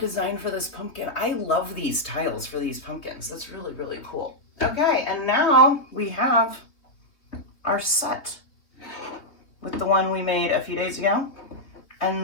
for this pumpkin. I love these tiles for these pumpkins. That's really, really cool. Okay, and now we have our set with the one we made a few days ago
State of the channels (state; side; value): late; right; 3.3 ms